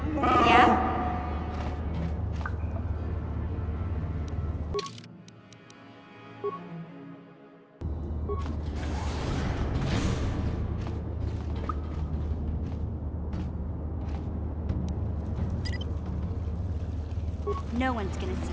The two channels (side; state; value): both; identical; correlation 1.00